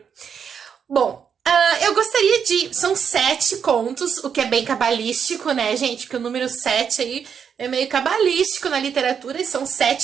Bom, eu gostaria de... São 7 contos, o que é bem cabalístico, né, gente? Porque o número 7 aí é meio cabalístico na literatura, e são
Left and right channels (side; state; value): left; quieter; 7.2 dB